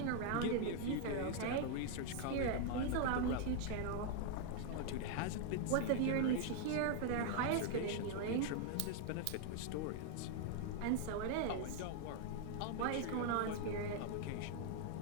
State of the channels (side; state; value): both; different; correlation 0.00